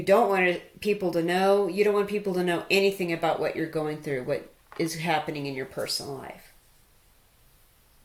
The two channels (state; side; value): identical; both; correlation 1.00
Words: don't want people to know. You don't want people to know anything about what you're going through, what is happening in your personal life.